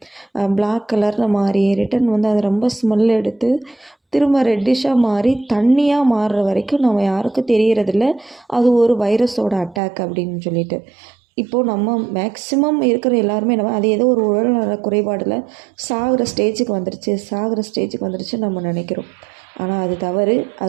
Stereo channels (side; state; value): left; drops out; at 9.8 s